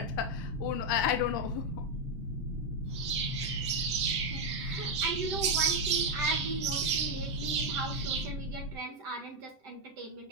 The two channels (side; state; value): both; normal; correlation 0.04